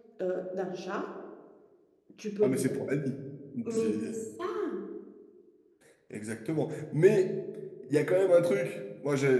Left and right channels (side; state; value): both; identical; correlation 1.00